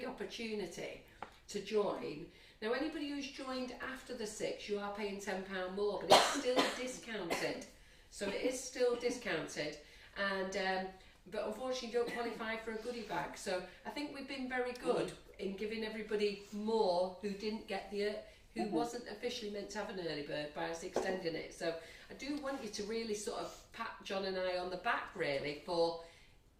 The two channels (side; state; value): both; identical; correlation 1.00